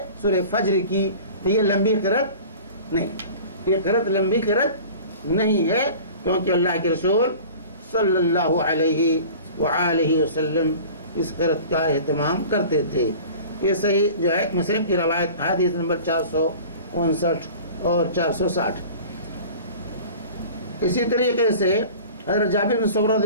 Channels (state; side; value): inverted; both; correlation -0.41